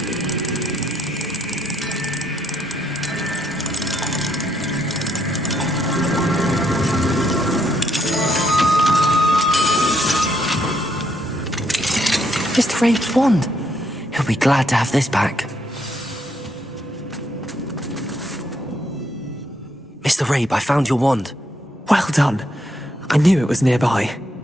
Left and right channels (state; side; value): normal; both; correlation 0.75